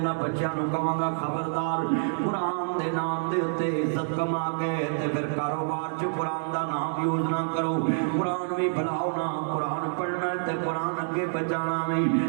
بچیاں نوں کہاں گا خبردار قرآن دے نام دے اتے عزت کما کے تے پھر کاروبار چ قرآن دا نام یوز نہ کرو، قرآن بھی بلاؤ نا، قرآن پڑھنا تے قرآن اگے بچانا بھی۔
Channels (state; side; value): silent; left; digital silence